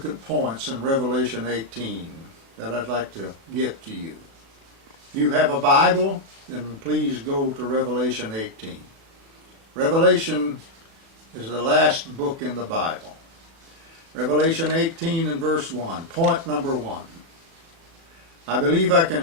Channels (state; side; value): late; left; 37 ms